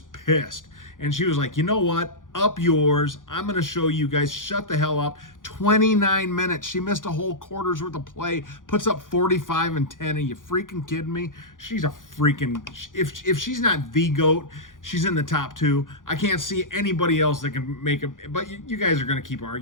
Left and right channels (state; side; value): late; right; 0.89 ms